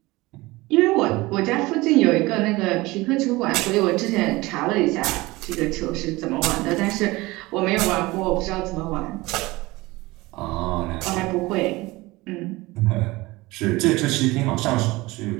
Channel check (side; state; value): left; quieter; 21.0 dB